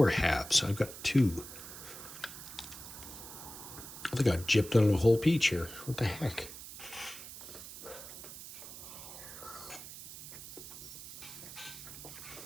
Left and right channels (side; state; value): right; noise; hiss, 12 dB below the sound